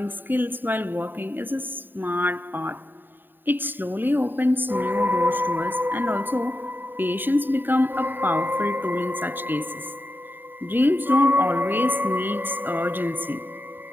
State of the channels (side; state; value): left; late; 0.093 ms